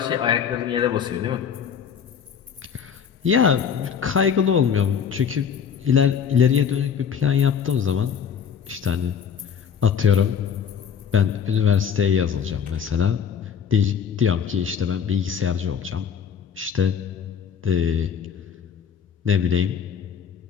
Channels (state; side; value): quieter; right; 7.4 dB